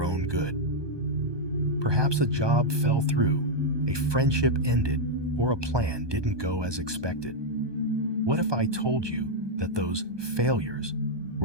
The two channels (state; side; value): late; left; 1.2 ms